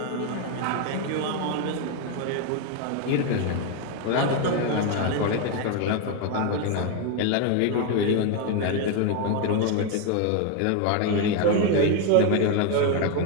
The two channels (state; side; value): different; both; correlation 0.01